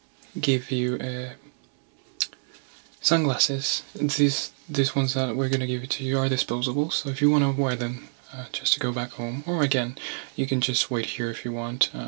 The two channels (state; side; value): silent; left; digital silence